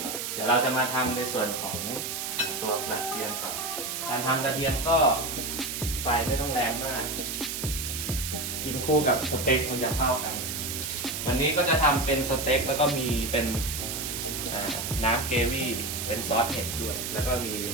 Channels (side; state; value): right; noise; hiss, 4 dB below the sound